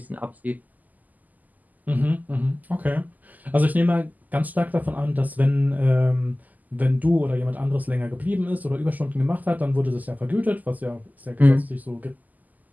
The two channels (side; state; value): left; late; 0.081 ms